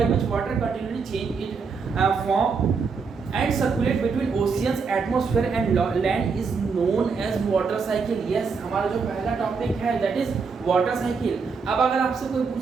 which water continually change it form and circulate between oceans, atmosphere and land is known as water cycle। yes, हमारा जो पहला टॉपिक है that is water cycle। अब अगर आपसे कोई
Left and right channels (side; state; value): left; quieter; 5.2 dB